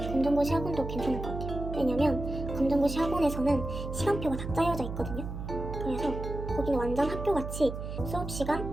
학원도 괜찮을 것 같아요. 왜냐면 검정고시 학원에서는 시간표가 다 짜여져 있거든요. 그래서 거기는 완전 학교같이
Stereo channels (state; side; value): noise; right; hum, 7 dB below the sound